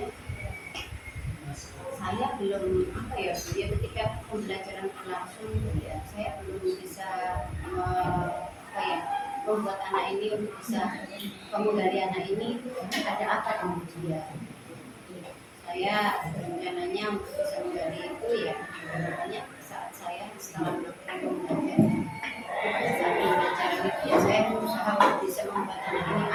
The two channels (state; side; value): identical; both; correlation 1.00